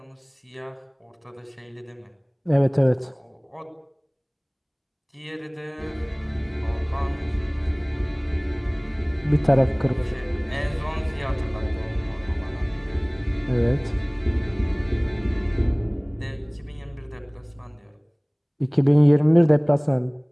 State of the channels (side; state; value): both; identical; correlation 1.00